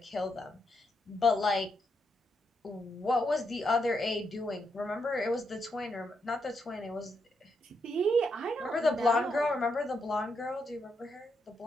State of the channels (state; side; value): normal; both; correlation 0.80